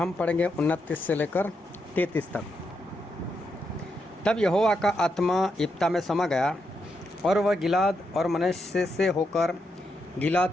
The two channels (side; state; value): both; normal; correlation 0.82